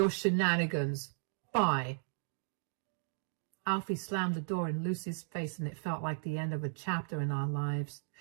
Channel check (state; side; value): silent; left; digital silence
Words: shenanigans. Bye. Alfie slammed the door in Lucy's face, and it felt like the end of a chapter in our lives.